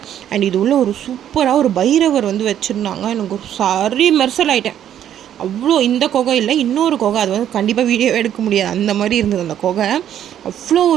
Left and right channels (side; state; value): left; quieter; 10.5 dB